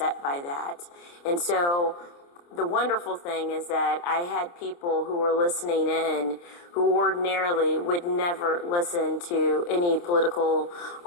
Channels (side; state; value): right; late; 29 ms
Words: by that. And so the wonderful thing is that I had people who were listening in who ordinarily would never listen to any political